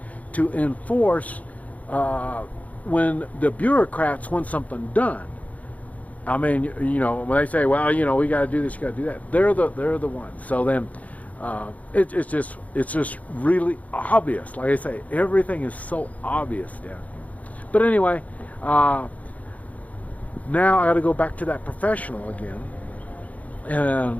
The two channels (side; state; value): right; late; 0.071 ms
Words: to enforce when the bureaucrats want something done. I mean, you know, when they say, well, you know, we got to do this, you got to do that, they're the ones. So then it's just really obvious. Like I say, everything is so obvious down here. But anyway, now I got to go back to that professional again